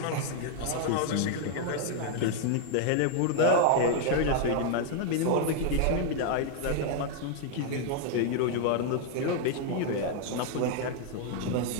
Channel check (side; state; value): both; different; correlation 0.00